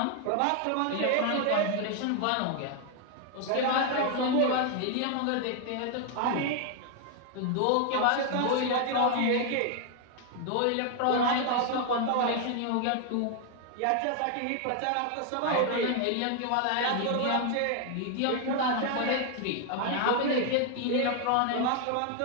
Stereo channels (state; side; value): different; both; correlation 0.00